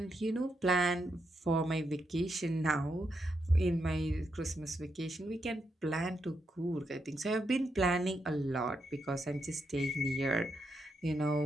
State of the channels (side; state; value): both; normal; correlation 0.82